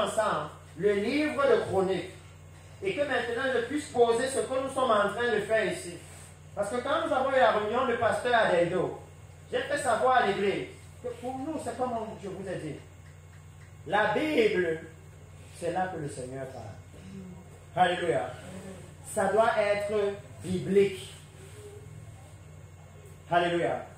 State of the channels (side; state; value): both; identical; correlation 1.00